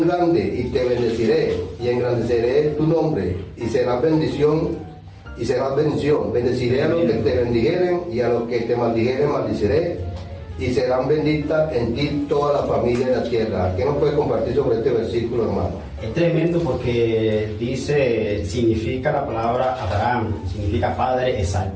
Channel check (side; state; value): both; identical; correlation 1.00